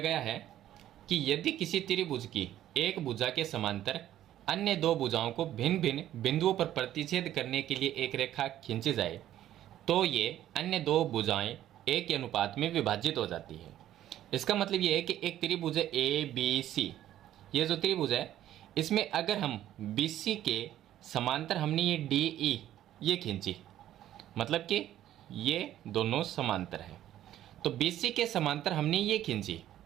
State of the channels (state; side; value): quieter; left; 12.5 dB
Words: है कि यदि किसी त्रिभुज की एक भुजा के समांतर अन्य दो भुजाओं को भिन्न भिन्न बिंदुओं पर प्रतिच्छेद करने के लिए एक रेखा खींची जाए तो ये अन्य दो भुजाएं एक के अनुपात में विभाजित हो जाती है। इसका मतलब ये है कि एक त्रिभुज है ए बी सी, ये जो त्रिभुज है इसमें अगर हम बी सी के समांतर हमने ये डी ई ये खींची, मतलब कि ये दोनों समांतर है, तो बी सी के समांतर हमने ये खींची